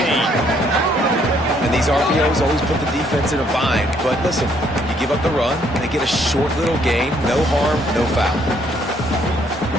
And these RPOs always put the defense in a bind. But listen, you give up the run, they get a short little gain, no harm, no foul.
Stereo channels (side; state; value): both; normal; correlation 0.68